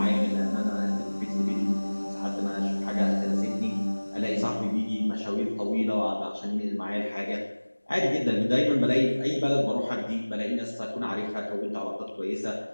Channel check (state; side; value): inverted; both; correlation -1.00